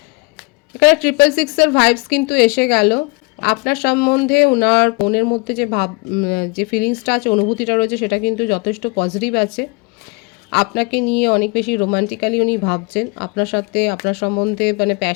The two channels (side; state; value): right; quieter; 30.0 dB